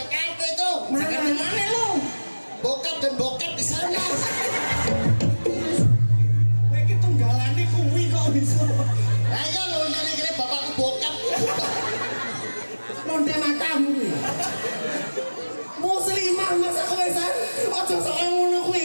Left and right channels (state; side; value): inverted; both; correlation -1.00